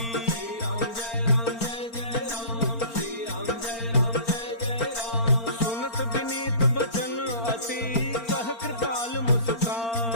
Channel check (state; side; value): late; right; 4.4 ms